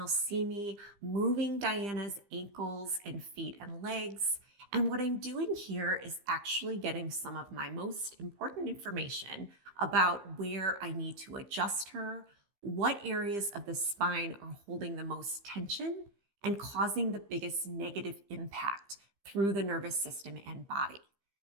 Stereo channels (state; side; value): late; left; 15 ms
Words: see me moving Diana's ankles and feet and legs. And what I'm doing here is actually getting some of my most important information about where I need to adjust her, what areas of the spine are holding the most tension and causing the biggest negative impact through the nervous system and body.